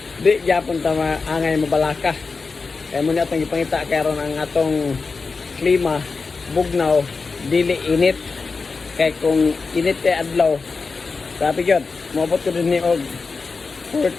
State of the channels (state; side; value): quieter; right; 4.4 dB